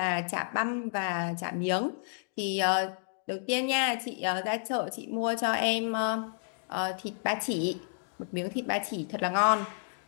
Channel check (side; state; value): right; silent; digital silence